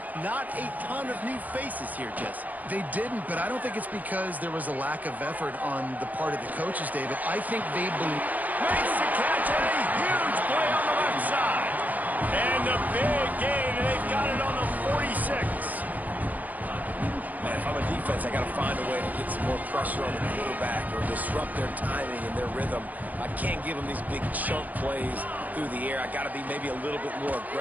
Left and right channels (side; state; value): left; late; 0.080 ms